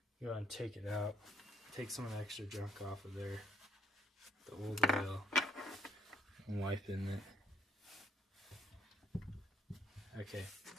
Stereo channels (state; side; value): normal; both; correlation 0.69